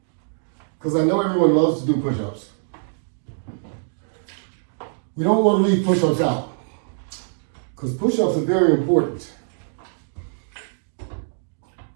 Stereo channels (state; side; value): silent; left; digital silence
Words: Because I know everyone loves to do push-ups. We don't want to leave push-ups out. Because push-ups are very important.